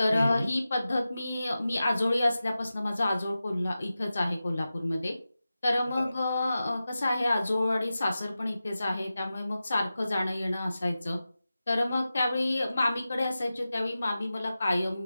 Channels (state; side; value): inverted; both; correlation -0.94